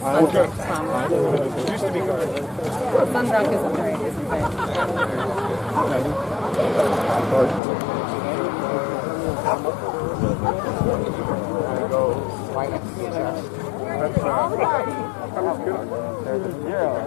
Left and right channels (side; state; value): right; drops out; at 7.6 s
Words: promise. Used to be guard. Sunbrook isn't very, isn't bad.